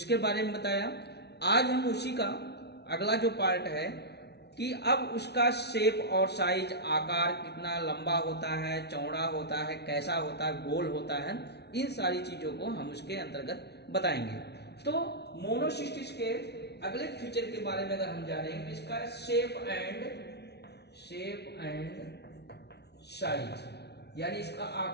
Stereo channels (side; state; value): right; late; 0.49 ms